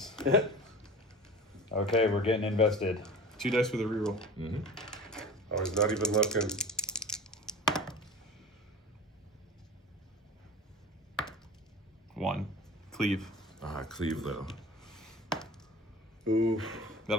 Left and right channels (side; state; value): both; normal; correlation 0.37